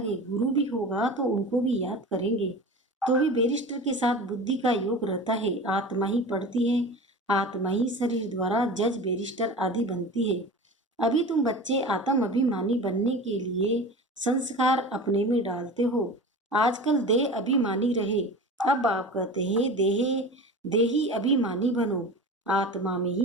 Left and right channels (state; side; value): normal; both; correlation 0.34